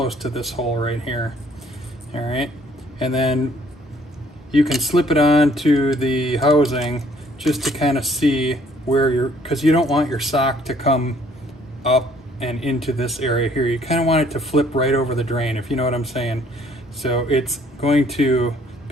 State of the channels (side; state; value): both; normal; correlation 0.61